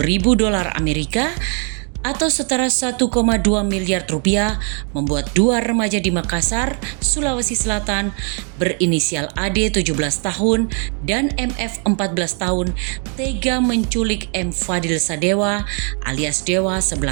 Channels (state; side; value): quieter; left; 39.8 dB